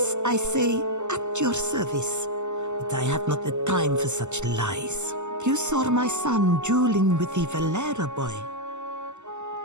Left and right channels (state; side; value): late; left; 0.83 ms